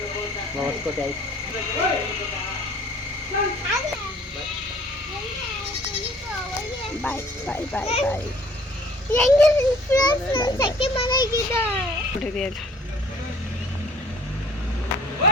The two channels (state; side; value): normal; both; correlation 0.52